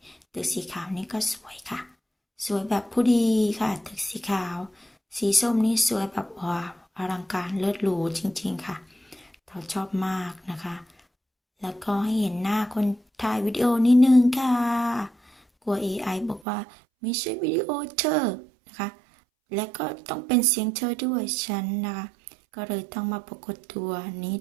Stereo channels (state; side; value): drops out; left; at 16.4 s